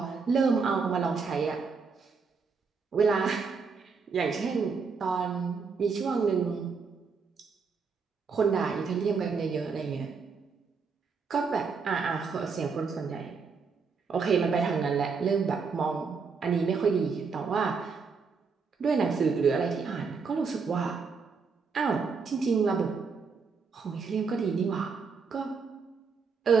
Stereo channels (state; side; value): quieter; left; 5.2 dB